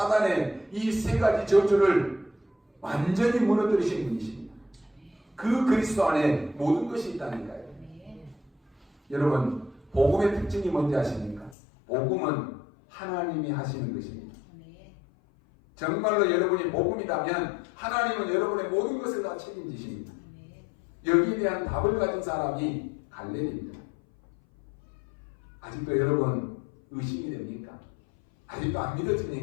이 세 가지 저주를 완전히 무너뜨리신 분이십니다. 그 그리스도 안에 모든 것이 있다니까요. 여러분, 복음의 특징이 뭔지 아십니까? 복음은 하나님이 하시는 것입니다. 정말로 여러분이 복음이라면 하나님은 여러분의 모든 것을 다 책임지십니다. 여기에 대한 답을 가진 사람이 갈렙입니다. 아직도 여러분 의심이 됩니까? 아직도 안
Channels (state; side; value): drops out; right; at 11.6 s